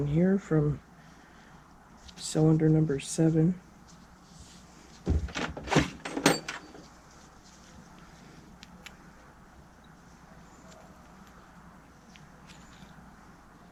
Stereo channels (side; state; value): both; identical; correlation 1.00